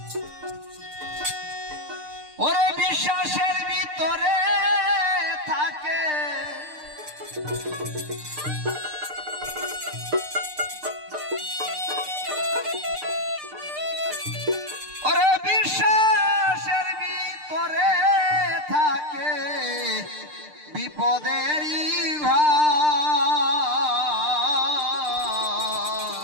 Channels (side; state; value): left; late; 6.6 ms